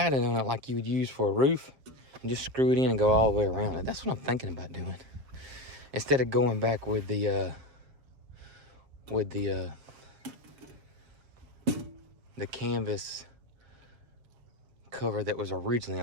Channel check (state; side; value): late; left; 7.5 ms